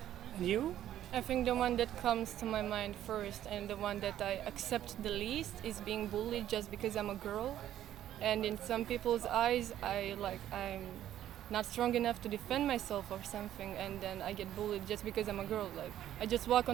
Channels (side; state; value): left; quieter; 11.9 dB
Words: And you? I think the one that comes to my mind first and the one that I accept the least is being bullied just because I'm a girl. And in some people's eyes, I'm not strong enough to defend myself or something, and then I get bullied just because I'm a girl. Like I just walk